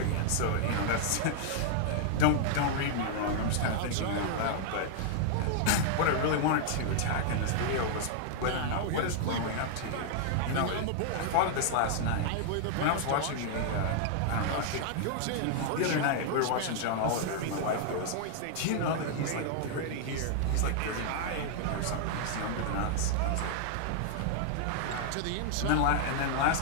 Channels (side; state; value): both; different; correlation -0.01